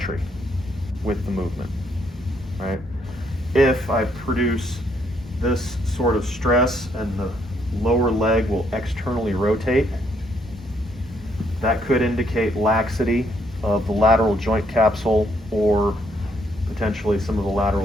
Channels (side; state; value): both; normal; correlation 0.72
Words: with the movement, right? If I produce this sort of stress and the lower leg will externally rotate, that could indicate laxity of the lateral joint capsule or potentially some of the